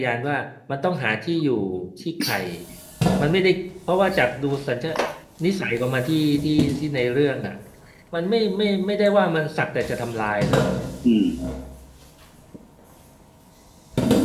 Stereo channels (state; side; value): identical; both; correlation 1.00